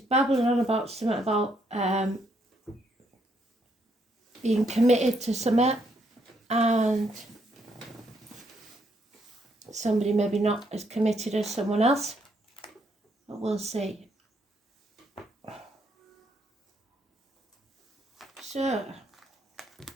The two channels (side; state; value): both; normal; correlation 0.73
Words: babbling on about something about being committed to something, and somebody maybe not as committed as someone else, but we'll see. So,